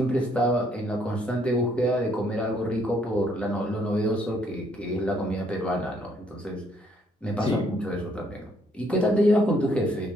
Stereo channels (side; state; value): both; normal; correlation 0.68